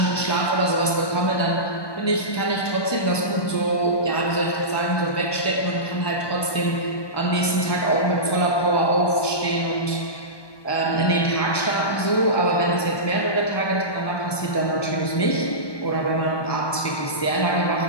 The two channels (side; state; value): right; late; 1.2 ms